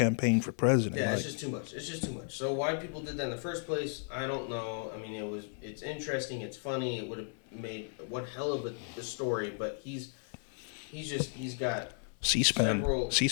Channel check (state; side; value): silent; right; 55 dB below the other